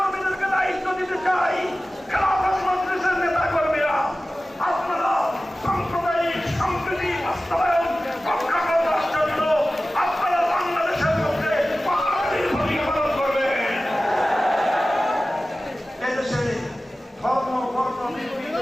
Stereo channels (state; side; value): normal; both; correlation 0.96